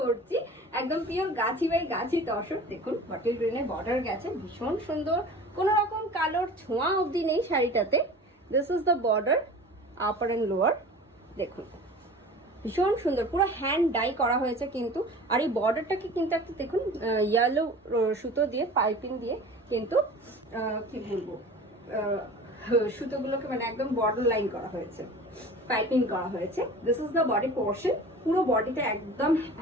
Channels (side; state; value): both; normal; correlation 0.40